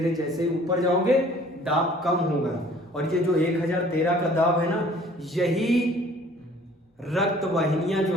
जैसे ऊपर जाओगे दाब कम होगा। और ये जो 1013 का दाब है ना, यही रक्त वाहिनियां जो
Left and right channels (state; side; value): normal; both; correlation 0.54